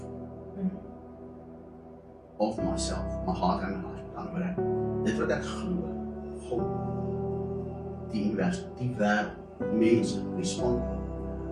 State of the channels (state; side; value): identical; both; correlation 1.00